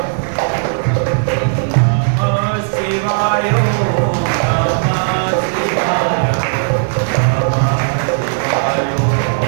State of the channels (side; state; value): left; silent; digital silence